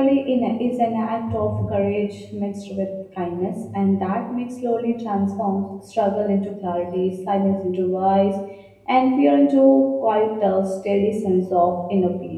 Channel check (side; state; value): both; identical; correlation 1.00